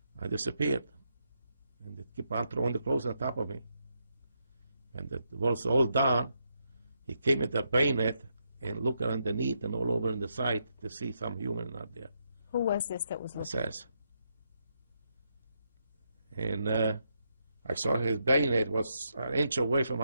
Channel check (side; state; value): both; inverted; correlation -0.80